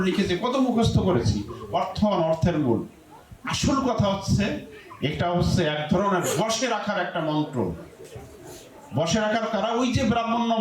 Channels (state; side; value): identical; both; correlation 1.00